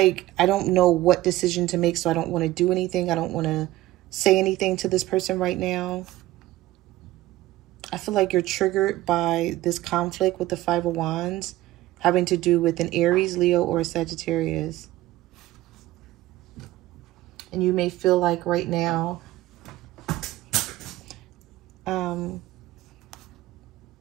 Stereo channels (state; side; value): quieter; left; 16.6 dB